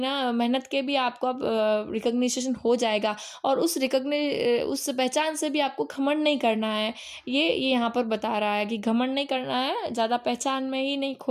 मेहनत के भी आपको रिकग्निशन हो जाएगा। और उस उस पहचान से भी आपको घमंड नहीं करना है। ये यहाँ पर बता रहा है कि घमंड नहीं करना है, ज़्यादा पहचान में ही नहीं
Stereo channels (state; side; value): identical; both; correlation 1.00